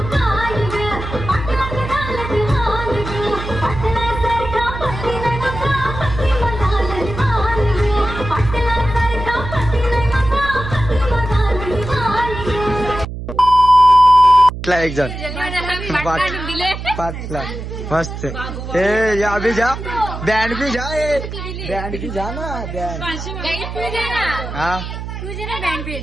एक जण 5 लाख मस्त ए या अभी जा बैंड भी जा बैंड भी जा ना बैंड हाँ तुझे ना बँड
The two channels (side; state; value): right; noise; hum, 8 dB below the sound